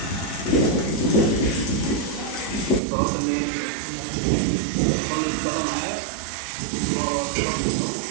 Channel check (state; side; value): drops out; left; at 2.8 s